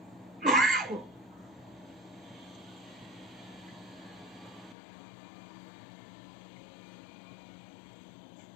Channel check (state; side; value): drops out; right; at 4.8 s